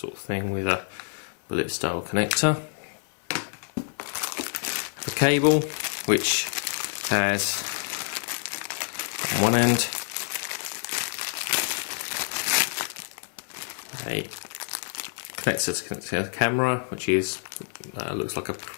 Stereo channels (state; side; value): silent; right; digital silence